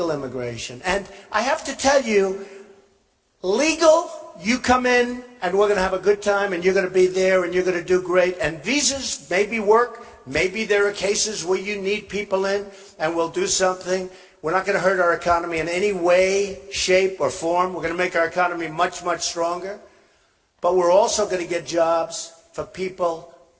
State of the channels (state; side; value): identical; both; correlation 1.00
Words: immigration. And I have to tell you, legal, you come in and we're going to have a good time and you're going to be there and you're going to do great. And visas maybe work. Maybe there are cases where you need people in and we'll do something. We're not going to hurt our economy in any way, shape, or form. We're going to make our economy much, much stronger. But we're also going to get jobs for people